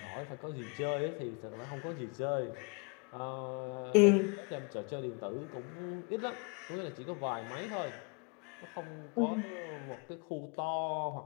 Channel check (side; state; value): right; quieter; 34.0 dB